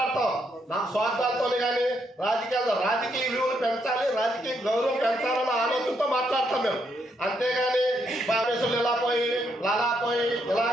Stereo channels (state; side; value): normal; both; correlation 0.76